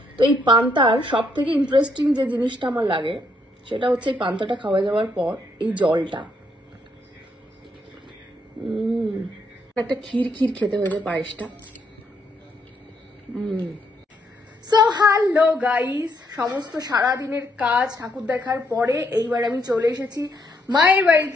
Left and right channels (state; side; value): normal; both; correlation 0.74